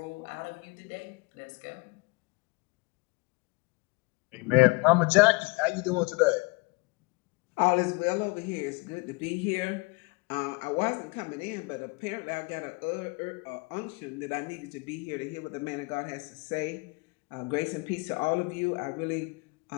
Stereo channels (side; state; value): right; quieter; 27.9 dB